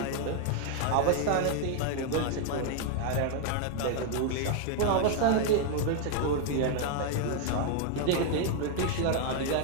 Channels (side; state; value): both; different; correlation 0.00